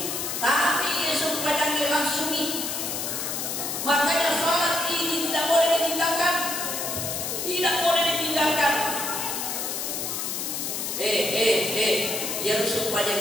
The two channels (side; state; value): left; noise; hiss, 3 dB below the sound